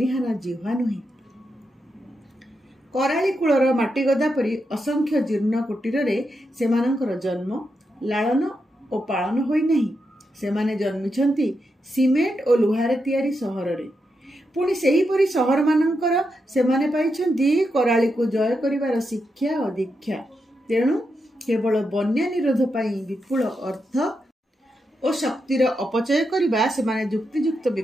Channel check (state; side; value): normal; both; correlation 0.85